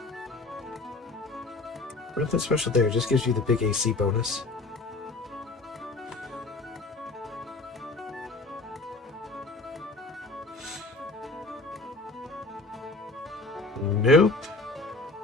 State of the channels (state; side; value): quieter; right; 3.3 dB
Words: Nothing special there, just gives you the big AC bonus. Nope.